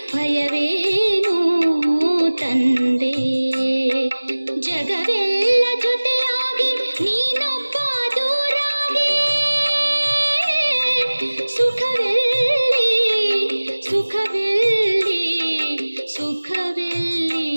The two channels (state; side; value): inverted; both; correlation -1.00